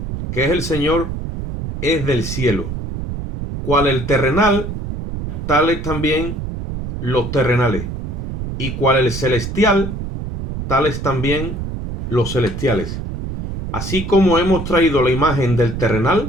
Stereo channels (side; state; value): right; noise; rumble, 6 dB below the sound